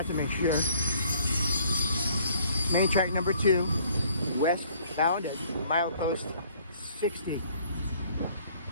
to make sure. Main track number 2, westbound at milepost 60.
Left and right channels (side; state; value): both; inverted; correlation -0.59